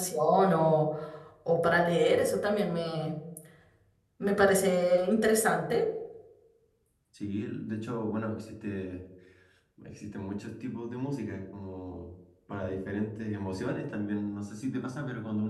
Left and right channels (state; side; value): identical; both; correlation 1.00